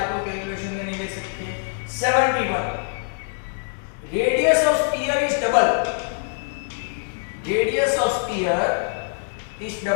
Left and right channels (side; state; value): right; silent; 63 dB below the other